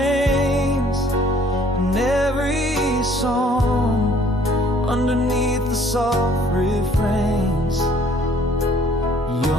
in every song, underneath the soft refrains.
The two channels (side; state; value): both; normal; correlation 0.59